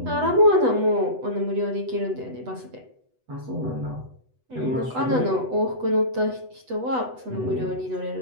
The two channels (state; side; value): late; left; 8.0 ms